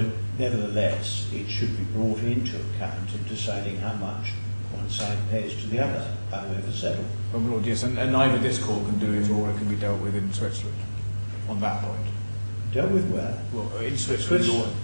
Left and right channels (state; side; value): inverted; both; correlation -1.00